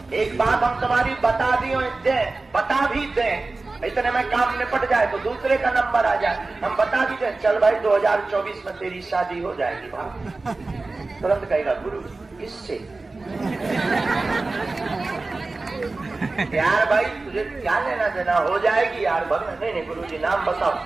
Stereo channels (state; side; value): quieter; left; 3.4 dB